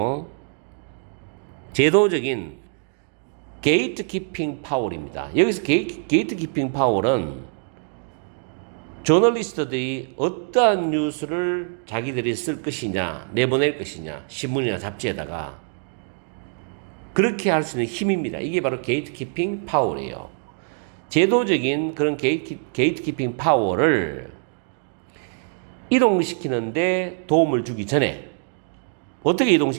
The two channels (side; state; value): left; silent; 57 dB below the other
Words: 제도적인 gatekeeping power입니다. 여기서 gatekeeping power은 저널리스트들이 어떠한 뉴스를 자기들이 쓸 것이냐, 내보낼 것이냐, 신문이나 잡지에다가 그렇게 할 수 있는 힘입니다. 이게 바로 게이트키핑 파워예요. 제도적인 그런 게이트키핑 파워를 이동시키는데 도움을 주기 전에 어떻게